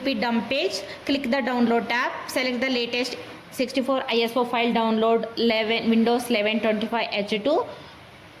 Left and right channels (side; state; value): both; identical; correlation 1.00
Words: dump page, click the download tab, select the latest 64 ISO file download Windows 11 25H2.